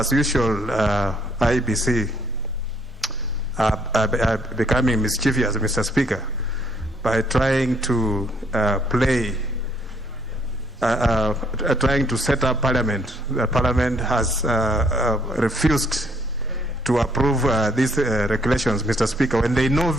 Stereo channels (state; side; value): normal; both; correlation 0.66